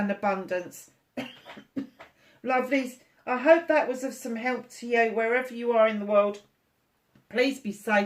abundance. Lovelies, I hope that was of some help to you wherever you are in the world. Please be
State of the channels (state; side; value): identical; both; correlation 1.00